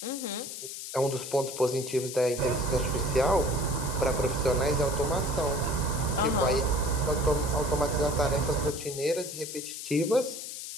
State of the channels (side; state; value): left; noise; hiss, 8 dB below the sound